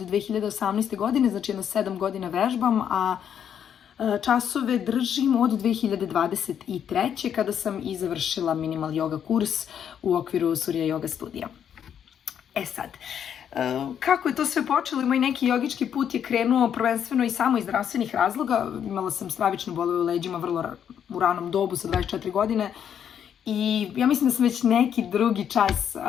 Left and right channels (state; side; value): quieter; right; 8.8 dB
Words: godine, znači jedno 7 godina vežbam, a časove držim od 2023. kada sam i završila minimal yoga kurs u okviru Surya Yoga studija. Sad, kako je to sve počelo? Moj neki jogički put je krenuo prvenstveno i samo iz zdravstvenih razloga. Imala sam stravične bolove u leđima vrlo u ranom dobu sa 24 godine i ja mislim da sam već neki drugi čas